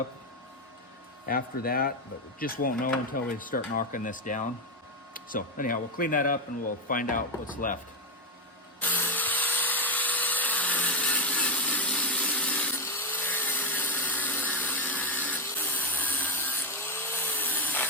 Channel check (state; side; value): normal; both; correlation 0.06